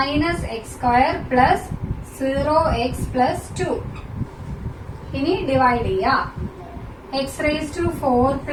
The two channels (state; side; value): identical; both; correlation 1.00